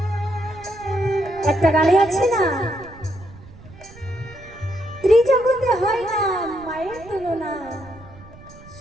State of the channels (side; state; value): right; noise; rumble, 20 dB below the sound